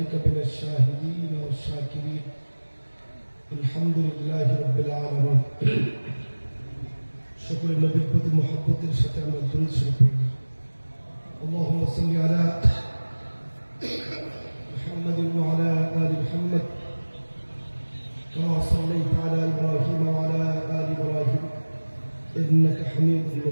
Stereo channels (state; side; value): inverted; both; correlation -1.00